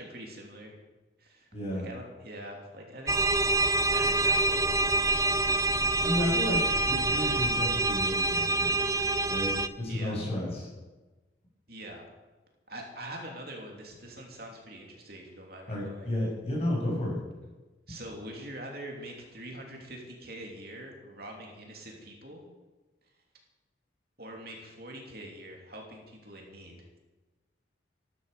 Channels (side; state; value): both; normal; correlation -0.14